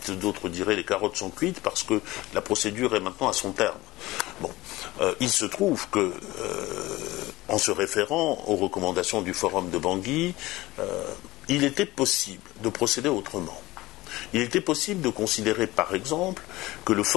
d'autres diraient les carottes sont cuites, parce que la procédure est maintenant à son terme. Bon, il se trouve que, en se référant aux recommandations du Forum de Bangui, il était possible de procéder autrement. Il était possible de considérer, par exemple, que le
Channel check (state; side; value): quieter; right; 19.0 dB